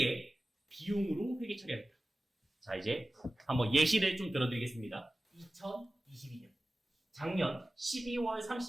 비용으로 회계 처리합니다. 자, 이제 한번 예시를 좀 들어드리겠습니다. 2022년 작년 12월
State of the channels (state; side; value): normal; both; correlation 0.96